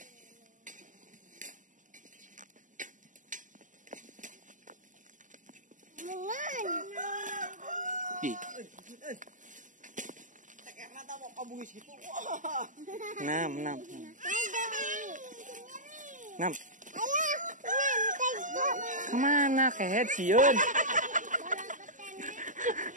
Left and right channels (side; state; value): left; late; 0.37 ms